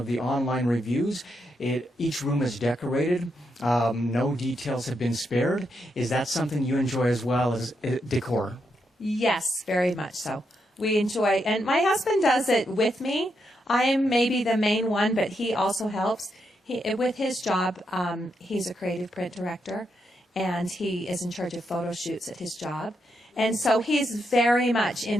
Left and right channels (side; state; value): both; normal; correlation 0.81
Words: the online reviews, each room is decorated. No details have been spared. Is that something you enjoy as well as decor? Yes, very much so. We enjoy, and my husband does it with me. I am maybe the main one, but he also helps. With his job, he's a creative print director, and he is in charge of photo shoots at his job. And so he's very much